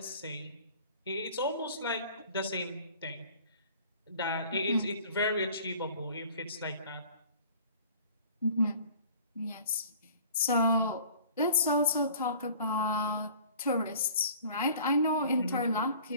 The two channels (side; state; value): both; inverted; correlation -0.49